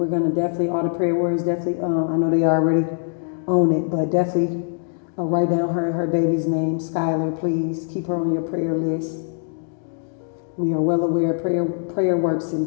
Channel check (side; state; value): right; silent; digital silence